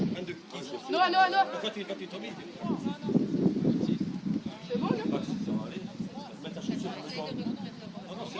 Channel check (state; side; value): identical; both; correlation 1.00